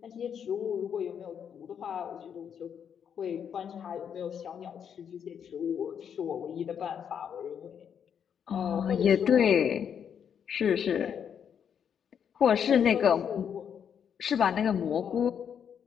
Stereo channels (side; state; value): right; quieter; 8.0 dB